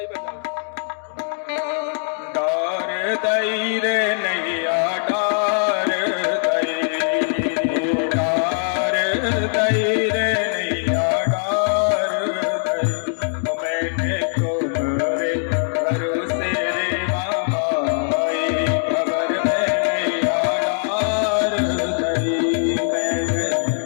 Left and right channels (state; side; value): silent; right; digital silence